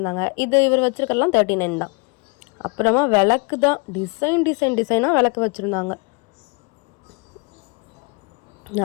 இது இவர் வச்சுருக்கலாம் 39 தான். அப்புறமா விளக்கு தான், டிசைனாக விளக்கு வச்சுருந்தாங்க.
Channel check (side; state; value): right; quieter; 31.1 dB